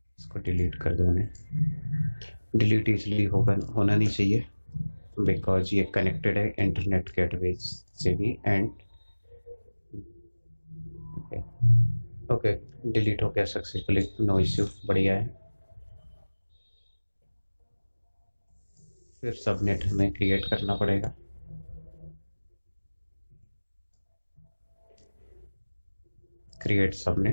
इसको डिलीट कर दो। डिलीट इसलिए होना नहीं चाहिए बिकॉज ये कनेक्टेड है इंटरनेट गेटवे से भी, एंड ओके डिलीट हो गया सक्सेसफुली, नो इश्यू, बढ़िया है। फिर सबनेट हमें क्रिएट करना पड़ेगा। क्रिएट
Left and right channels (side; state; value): both; inverted; correlation -1.00